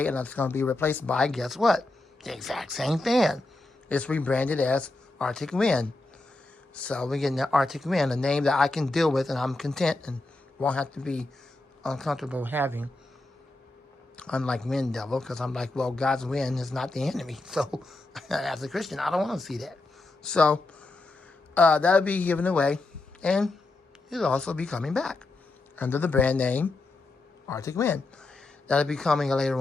and it's going to be replaced by, guess what? The exact same fan. It's rebranded as Arctic Wind. So we're getting the Arctic Wind, a name that I can deal with and I'm content and won't have to be uncomfortable having. Unlike Wind Devil, because I'm like, well, God's wind is not the enemy. So as a Christian, I don't want to see that. So that'll be given away and it'll also be coming back under the brand name Arctic Wind. That'll be coming later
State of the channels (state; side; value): quieter; right; 3.0 dB